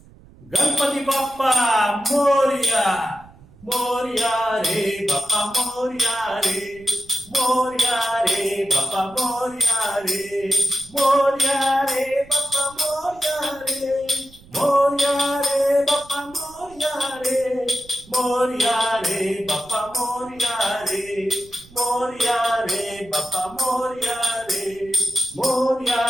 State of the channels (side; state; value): right; noise; rumble, 24 dB below the sound